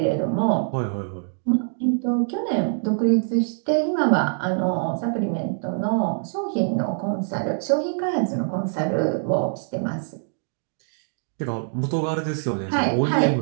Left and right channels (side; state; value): left; silent; digital silence